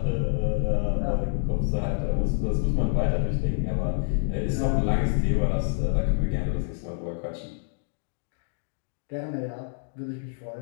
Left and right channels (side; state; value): right; silent; digital silence